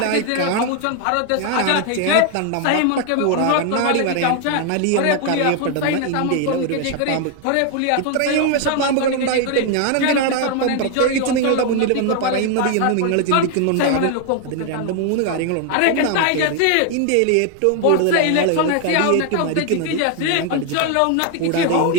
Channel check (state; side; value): different; both; correlation 0.01